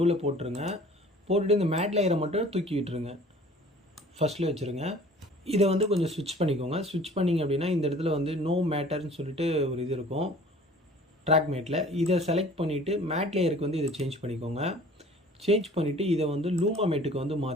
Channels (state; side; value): normal; both; correlation 0.49